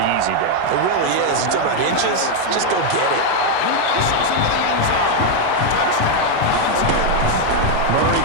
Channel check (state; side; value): different; both; correlation 0.01